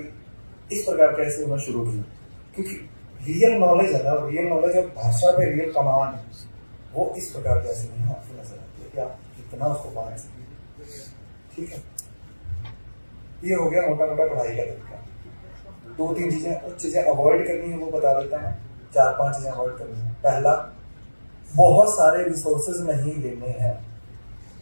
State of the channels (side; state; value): both; inverted; correlation -1.00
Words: इस प्रकार के ऐसे उन्होंने शुरू किया, क्योंकि रियल नॉलेज है ना, रियल नॉलेज और भाषा पे रियल कमांड है वो इस प्रकार के ऐसे नहीं आपको नजर आती है कि आप कितना उसको पा सकते। ठीक है, ये हो गया मोटा मोटा पढ़ाई का तरीका। 2-3 चीजें कुछ चीजें अवॉइड करनी है वो बता देता हूँ। 4-5 चीजें अवॉइड करनी है। पहला, बहुत सारे रिसोर्सेज नहीं लेने हैं।